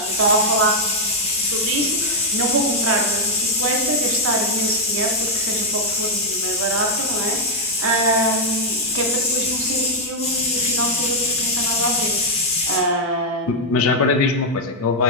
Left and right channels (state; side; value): normal; both; correlation -0.02